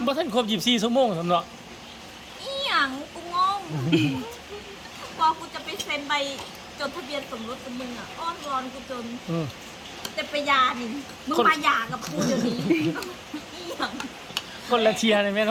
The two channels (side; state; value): both; identical; correlation 1.00